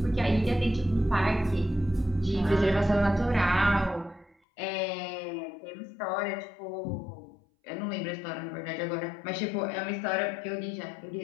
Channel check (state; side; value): drops out; right; at 4.4 s